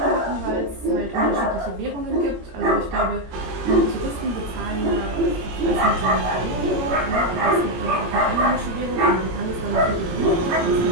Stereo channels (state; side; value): late; left; 17 ms